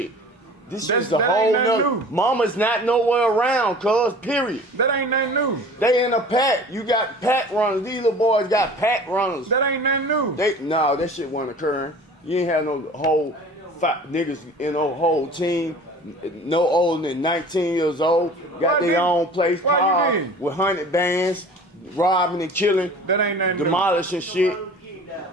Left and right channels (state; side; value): normal; both; correlation 0.43